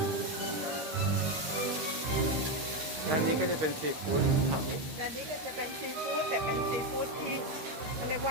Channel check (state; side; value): late; left; 13 ms